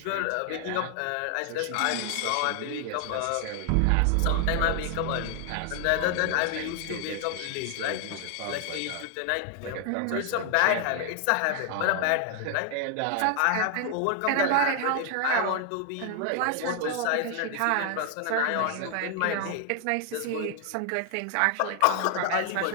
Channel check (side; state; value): both; different; correlation 0.00